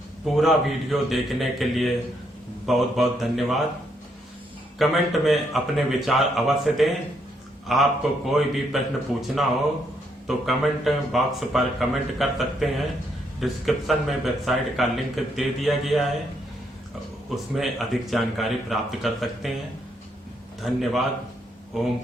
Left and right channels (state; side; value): normal; both; correlation 0.75